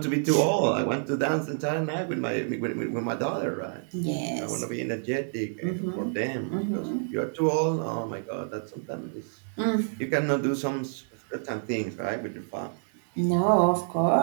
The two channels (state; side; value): silent; left; digital silence